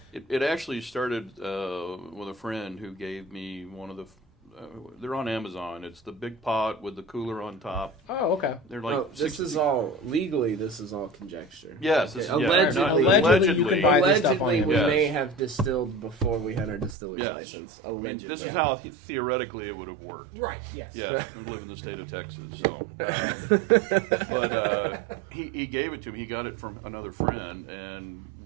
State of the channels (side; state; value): left; drops out; at 16.9 s